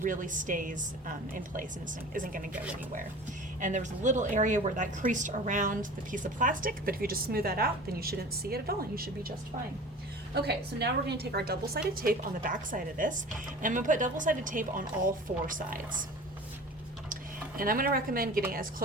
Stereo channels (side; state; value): both; normal; correlation 0.40